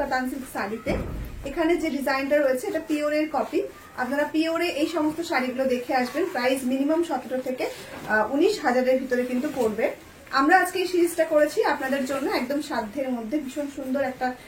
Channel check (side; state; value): both; identical; correlation 1.00